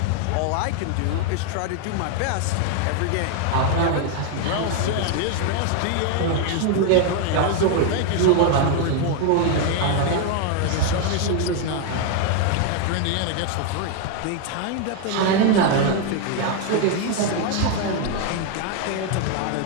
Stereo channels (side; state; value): both; different; correlation 0.00